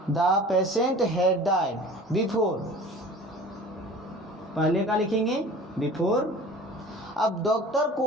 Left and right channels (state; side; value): normal; both; correlation 0.42